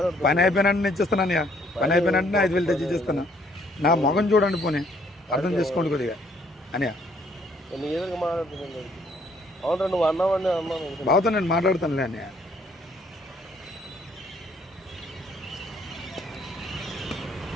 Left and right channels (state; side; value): normal; both; correlation 0.65